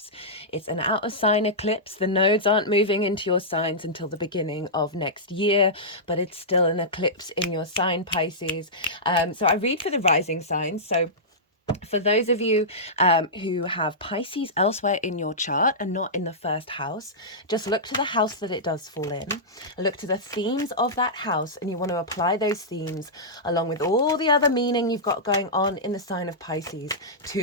It's an out of sign eclipse. The nodes aren't moving into your signs until the beginning of next year, but it's still an eclipse in your sign, Pisces. So I read for the rising signs. So for those of you who have Pisces elsewhere in your chart and not in the first house, just look to the house that it does fall in. Look to the themes of that house, and you want to apply those themes along with all the other meaning you've got going on in the sign of Pisces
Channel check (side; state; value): both; normal; correlation -0.14